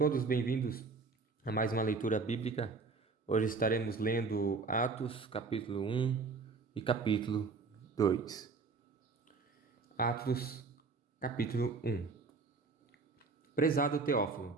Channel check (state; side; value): quieter; left; 4.4 dB